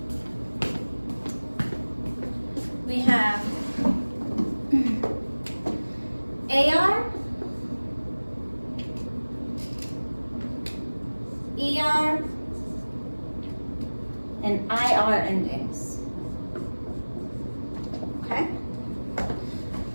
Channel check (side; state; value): both; inverted; correlation -1.00